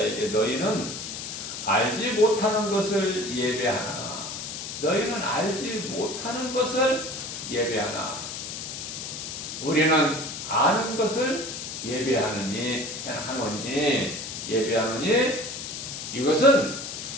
너희는 알지 못하는 것을 예배하나, 너희는 알지 못하는 것을 예배하나, 우리는 아는 것을 예배하느니 이것은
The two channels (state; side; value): noise; left; hiss, 7 dB below the sound